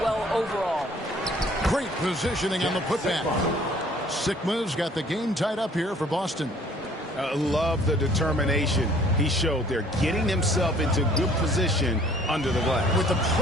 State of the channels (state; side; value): normal; both; correlation 0.56